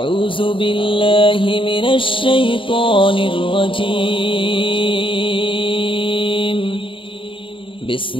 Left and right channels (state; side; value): late; right; 0.25 ms